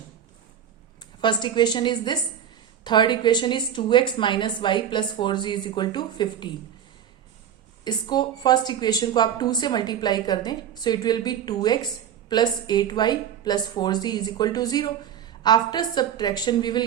First equation is this. Third equation is 2x minus y plus 4z is equal to 15. इसको first equation को आप 2 से मल्टीप्लाई कर दें, so it will be 2x plus 8y plus 4z is equal to 0. After subtraction we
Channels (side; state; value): left; quieter; 9.2 dB